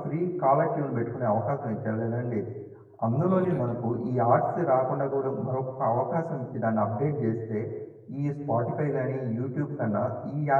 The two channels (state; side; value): identical; both; correlation 1.00